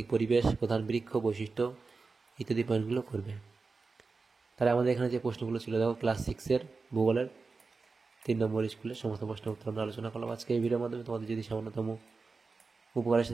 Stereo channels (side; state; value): left; quieter; 4.2 dB